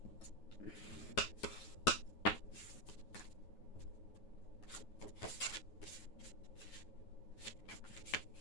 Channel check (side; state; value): right; late; 9.4 ms